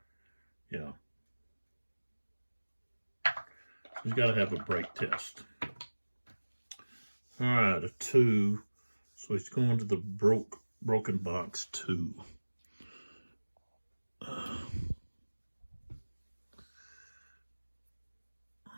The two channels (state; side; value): inverted; both; correlation -1.00